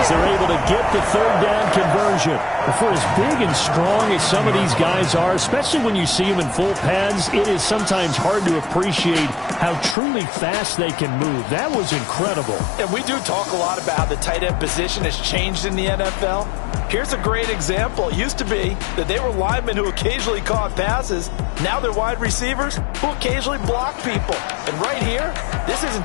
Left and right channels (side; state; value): right; drops out; at 10.0 s